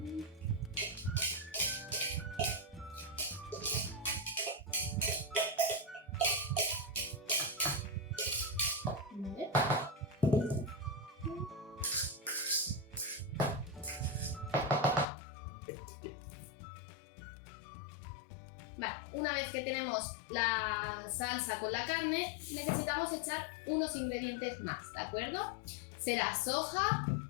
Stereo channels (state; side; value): drops out; right; at 15.1 s